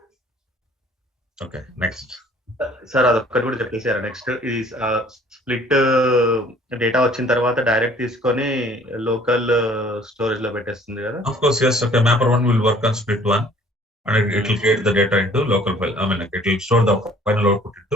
Okay, next. Sir అదొక్కటి కూడా చెప్పేసారు. Next ఇది split data వచ్చిన తర్వాత direct తీసుకొని local storage లో పెట్టేస్తుంది కదా? Of course, yes. Okay, mapper 1 will work on split 1 and it will create the data into local file. I mean, it will store the final output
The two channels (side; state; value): both; normal; correlation 0.55